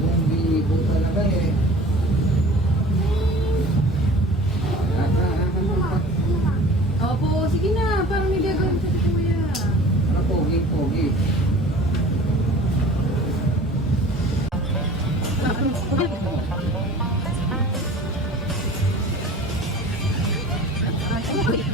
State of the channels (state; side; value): normal; both; correlation 0.44